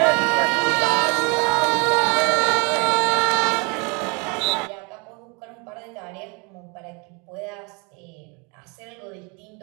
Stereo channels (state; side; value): quieter; left; 31.6 dB